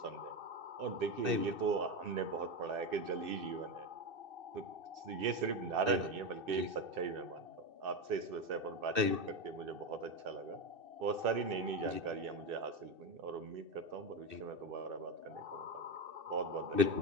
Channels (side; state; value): left; late; 2.6 ms